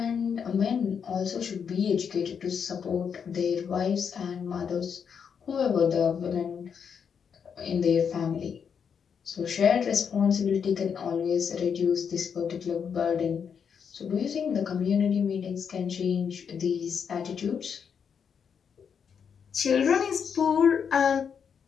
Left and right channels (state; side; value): quieter; right; 7.0 dB